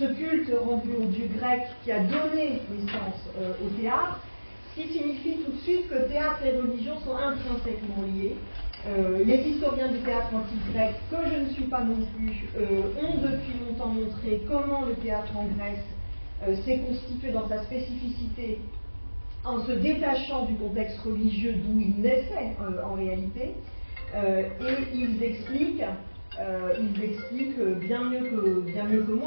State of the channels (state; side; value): inverted; both; correlation -1.00